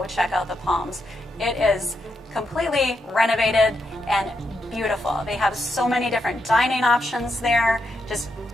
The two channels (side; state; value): both; normal; correlation 0.82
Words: check out the Palms. It is completely renovated and beautiful. They have so many different dining options there. Just